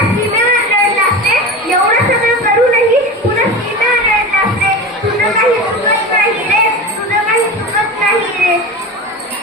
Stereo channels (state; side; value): normal; both; correlation 0.28